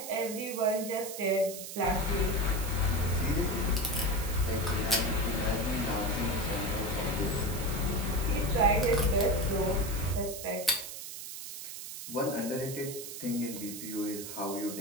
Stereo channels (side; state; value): right; noise; hiss, 9 dB below the sound